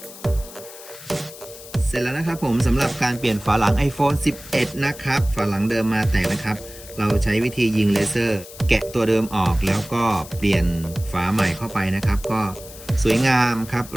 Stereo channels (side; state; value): left; noise; hiss, 16 dB below the sound